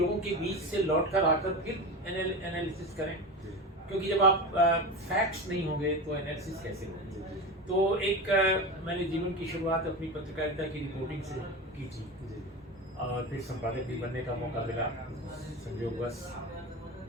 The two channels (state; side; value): normal; both; correlation 0.25